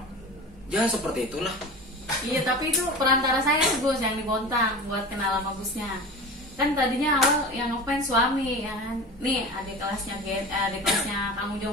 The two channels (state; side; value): normal; both; correlation 0.33